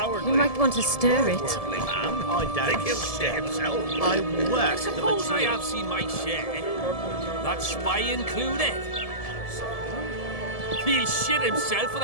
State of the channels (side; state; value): right; late; 1.7 ms